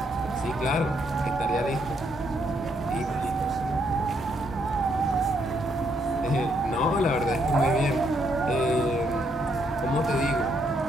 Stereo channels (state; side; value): normal; both; correlation 0.74